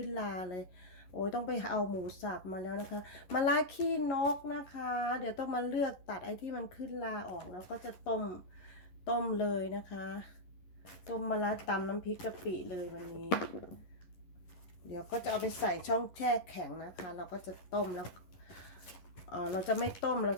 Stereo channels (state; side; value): late; right; 11 ms